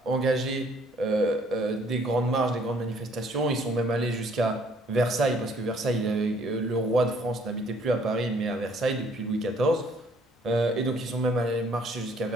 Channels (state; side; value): normal; both; correlation 0.62